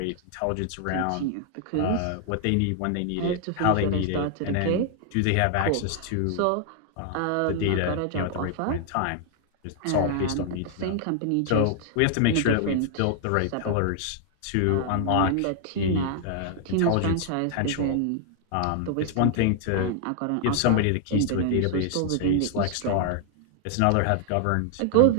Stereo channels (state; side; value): different; both; correlation 0.00